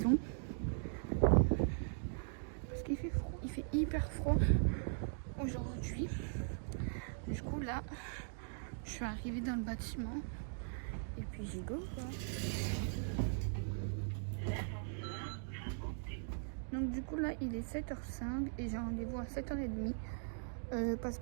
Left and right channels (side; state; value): left; silent; digital silence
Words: Parce qu'il fait froid, il fait hyper froid aujourd'hui. Du coup là je suis arrivée dans le bâtiment. Et puis j'y go quoi. Donc du coup là il est 7h05 et j'ai rendez-vous à 7h30 parce